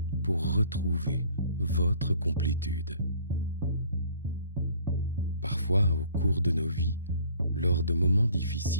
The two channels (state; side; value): inverted; both; correlation -0.55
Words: pour retrouver votre complétude. Parfois, au cours de nos vies, lors de moments